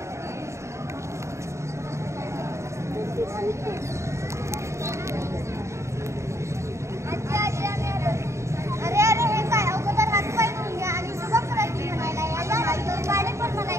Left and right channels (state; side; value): late; left; 0.14 ms